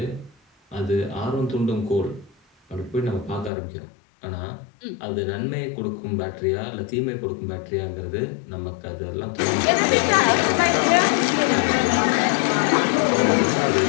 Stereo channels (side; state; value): right; drops out; at 3.5 s